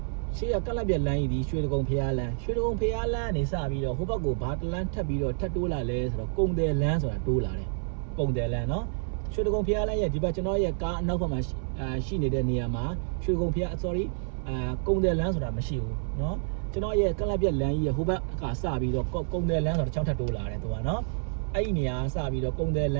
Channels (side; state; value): left; silent; 59 dB below the other